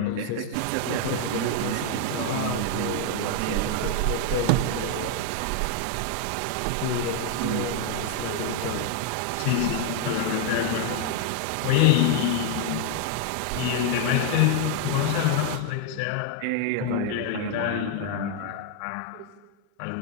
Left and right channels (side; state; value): both; different; correlation 0.00